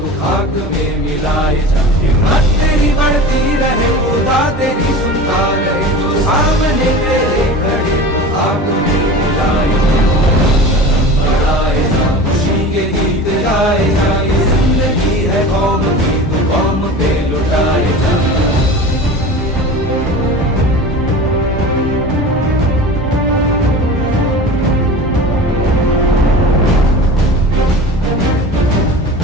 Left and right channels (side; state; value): both; normal; correlation 0.35